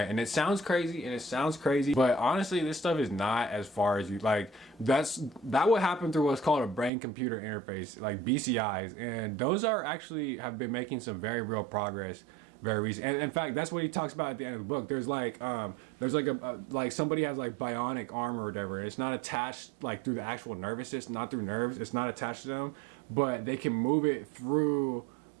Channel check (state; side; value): drops out; left; at 6.9 s